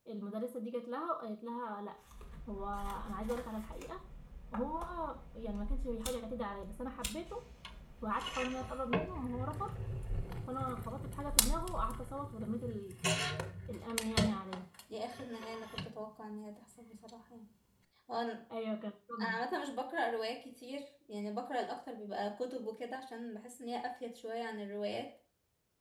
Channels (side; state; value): both; identical; correlation 1.00